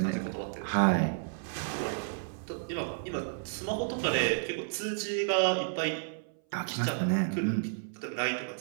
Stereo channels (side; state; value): left; silent; 57 dB below the other